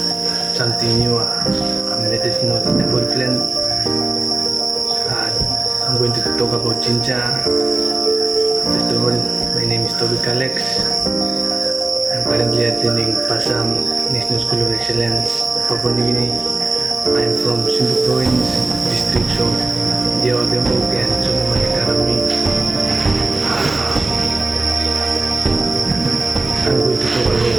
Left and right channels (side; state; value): left; quieter; 3.3 dB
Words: something new, medicinal herbal plant. I'm going to talk about ginger. First of all, my name is Toby Alex. I'm currently attending Passam National School of Excellence, Papua New Guinea. I'm from Simbu Province, districts of Jawa Tembok and Solomon Academy. I'm going to talk about